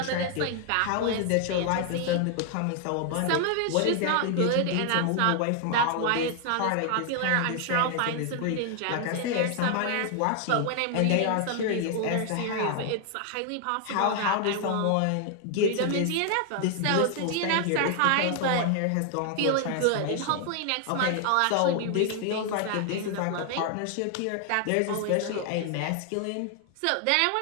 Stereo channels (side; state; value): both; different; correlation 0.00